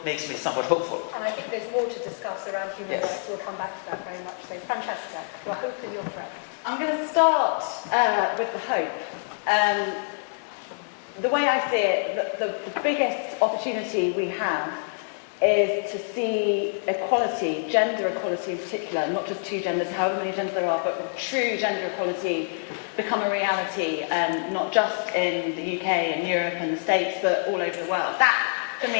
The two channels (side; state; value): right; silent; digital silence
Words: makes me somewhat hopeful. And I think there's more to discuss around human rights. We'll come back to that very much. So, Francesca, your hope and your threat. I'm going to start with the hope. The way I see it, the biggest opportunity we have is to see equality, gender equality in particular, not just two genders, however many genders there are, but true gender equality become a reality, not just in the UK and Europe and the States, but all over the world. That, for